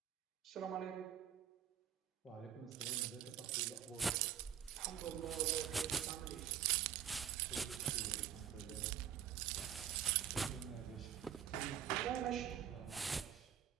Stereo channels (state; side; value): quieter; left; 9.7 dB